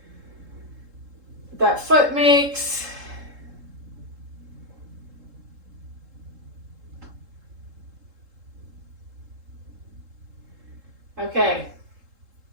that foot makes. Okay,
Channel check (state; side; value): late; left; 3.7 ms